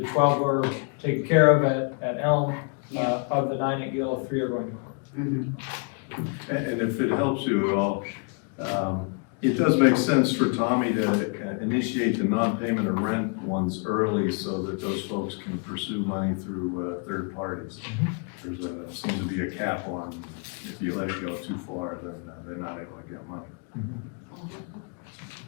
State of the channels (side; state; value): right; quieter; 38.6 dB